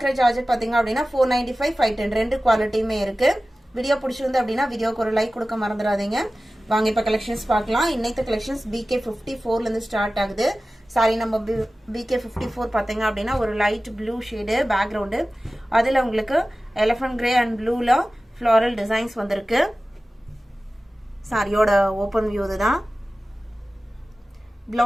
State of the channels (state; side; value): normal; both; correlation 0.96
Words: Georgette பாத்தீங்க அப்படினா 495 510 ரெண்டு குவாலிட்டியுமே இருக்கு. வீடியோ பிடிச்சிருந்து அப்படினா வீடியோக்கு ஒரு லைக் கொடுக்க மறந்துடாதீங்க. வாங்க இப்ப கலெக்ஷன்ஸ் பார்க்கலாம். இன்னைக்கு கலெக்ஷன்ஸ் BK54 ல இருந்து ஸ்டார்ட் ஆகுது. சாரி நம்ம BK54 பாத்தீங்க அப்படினா ஒரு லைட் ப்ளூ ஷேட் பேக்ரவுண்ட். அதுல உங்களுக்கு எலிஃபண்ட் கிரே அண்ட் ப்ளூல ஃப்ளோரல் டிசைன்ஸ் வந்திருக்கு. சாரியோட ஓபன் வியூ இதுதான்.